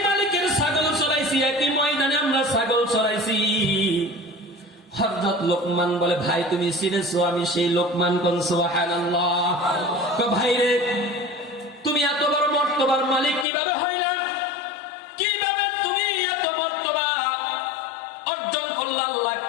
মালিকের ছাগল চড়াইছি, একই ময়দানে আমরা ছাগল চড়াইছি? হযরত লোকমান বলে, ভাই তুমি চিনেছো, আমি সেই লোকমান। কোন সুবহানাল্লাহ। ভাই রে, তুমি এত বড় মর্তবার মালিক কিভাবে হইলা? কিভাবে তুমি এত মর্তবা অর্জন করলা? আল্লাহ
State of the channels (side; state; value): right; drops out; at 13.5 s